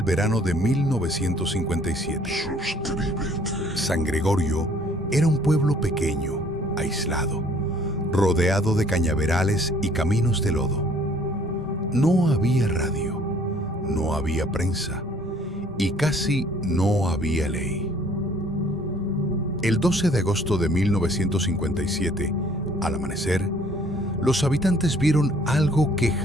verano de 1957. San Gregorio era un pueblo pequeño, aislado, rodeado de cañaverales y caminos de lodo. No había radio, no había prensa y casi no había ley. El 12 de agosto de 1957, al amanecer, los habitantes vieron algo que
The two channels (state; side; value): normal; both; correlation 0.58